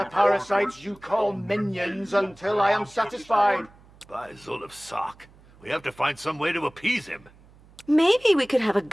parasites you call minions until I am satisfied. By Zolov Sock, we have to find some way to appease him. Maybe we could have a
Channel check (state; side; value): noise; right; hum, 26 dB below the sound